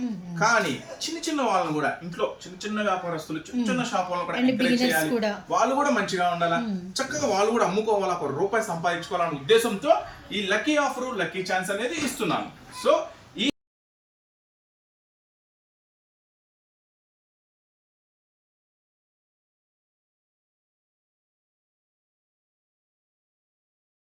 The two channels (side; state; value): both; identical; correlation 1.00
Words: కానీ చిన్న చిన్న వాళ్ళని కూడా, ఇంట్లో చిన్న చిన్న వ్యాపారస్తులు, చిన్న చిన్న షాప్ వాళ్ళని కూడా ఎంకరేజ్ చేయాలి, వాళ్ళు కూడా మంచిగా ఉండాలా, చక్కగా వాళ్ళు కూడా అమ్ముకోవాలా, ₹1 సంపాదించుకోవాలనే ఉద్దేశంతో ఈ లక్కీ ఆఫర్, లక్కీ ఛాన్స్ అనేది ఇస్తున్నాను. సో